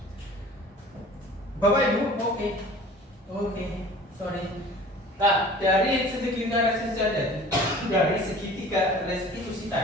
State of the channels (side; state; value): both; normal; correlation 0.45